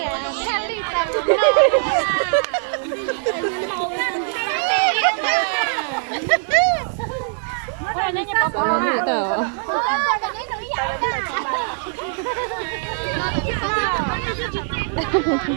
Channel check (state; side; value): silent; left; 65 dB below the other